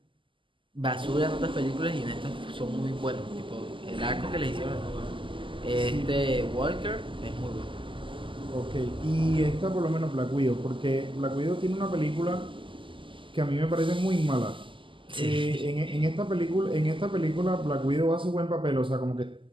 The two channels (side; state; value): left; late; 0.25 ms